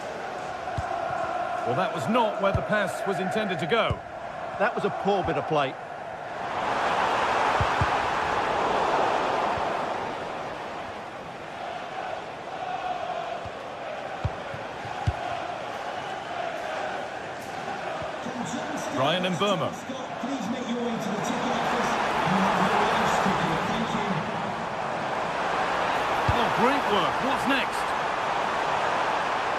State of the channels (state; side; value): identical; both; correlation 1.00